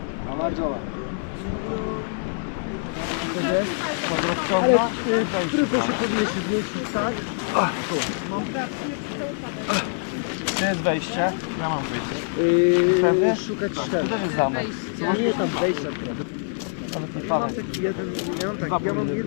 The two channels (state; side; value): silent; right; digital silence